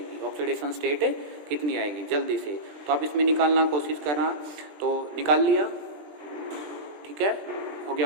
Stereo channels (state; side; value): late; left; 20 ms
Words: ऑक्सीडेशन स्टेट कितनी आएगी जल्दी से। तो आप इसमें निकालना कोशिश करना। तो निकाल लिया? ठीक है, हो गया